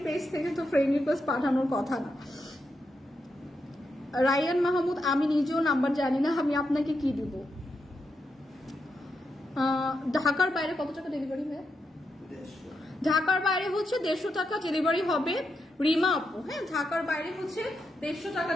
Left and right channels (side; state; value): both; normal; correlation 0.84